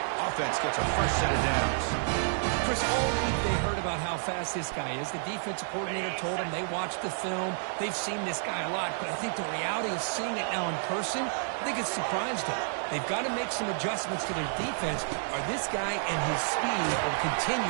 Offense gets a fresh set of downs. Chris, all week they heard about how fast this guy is. The defensive coordinator told them they watched the film. They've seen this guy a lot, but I think the reality of seeing it now in person, I think it's surprised them. They've got to make some adjustments to their defense, or this guy and his speed will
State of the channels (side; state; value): left; silent; digital silence